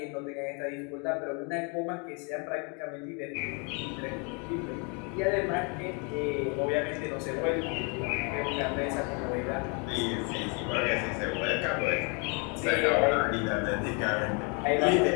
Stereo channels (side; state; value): right; quieter; 34.4 dB